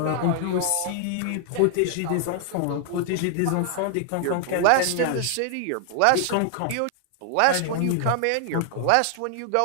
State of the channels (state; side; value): different; both; correlation 0.00